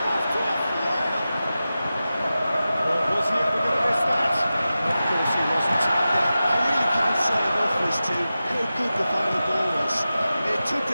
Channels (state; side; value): inverted; both; correlation -0.94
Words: off to a flyer. Well, was he ever going to miss that? Of course he wasn't. Yeah, I really couldn't say enough as to how good the final ball was. It took